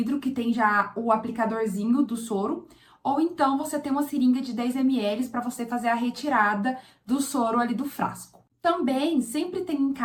que tem já o aplicadorzinho do soro, ou então você tem uma seringa de 10 ml para você fazer a retirada do soro ali do frasco. Também sempre tem em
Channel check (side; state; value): both; identical; correlation 1.00